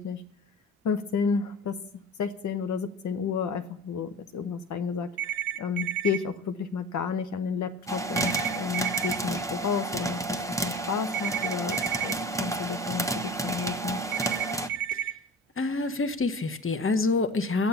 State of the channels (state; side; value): normal; both; correlation 0.36